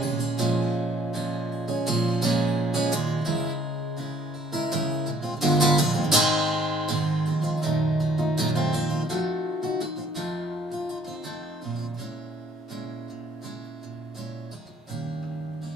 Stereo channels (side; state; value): both; normal; correlation 0.62